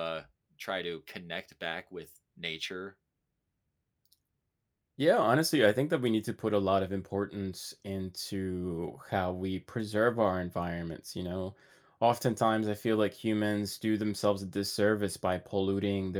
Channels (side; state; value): both; identical; correlation 1.00